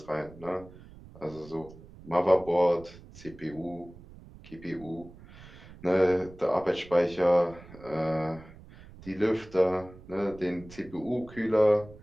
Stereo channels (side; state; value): right; noise; rumble, 19 dB below the sound